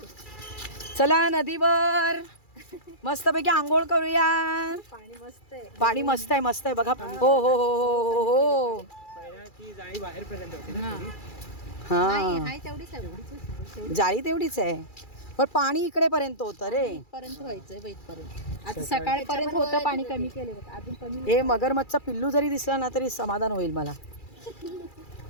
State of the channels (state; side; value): late; right; 2.3 ms